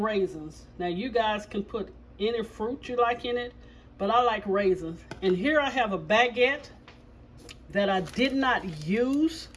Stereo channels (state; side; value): identical; both; correlation 1.00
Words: Now you guys can put any fruit you like in it, but I like raisins. And here I have a baguette that I did not use